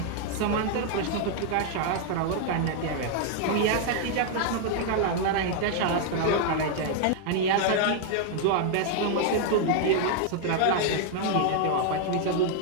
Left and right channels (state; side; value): different; both; correlation 0.00